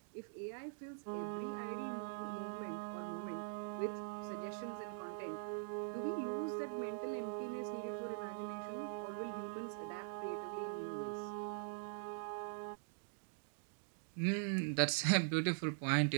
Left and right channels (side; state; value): left; silent; digital silence